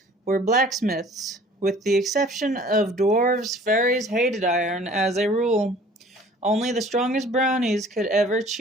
were blacksmiths. With the exception of dwarves, fairies hated iron as a rule. Only the strongest brownies could ever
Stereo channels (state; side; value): normal; both; correlation 0.51